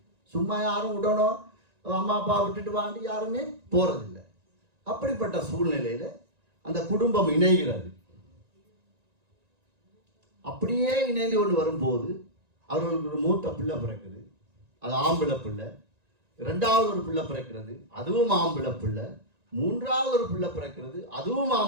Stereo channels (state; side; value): late; left; 1.9 ms